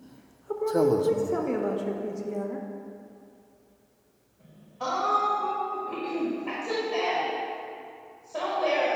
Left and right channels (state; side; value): identical; both; correlation 1.00